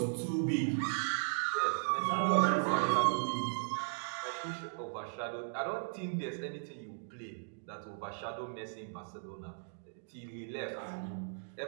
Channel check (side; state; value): left; silent; digital silence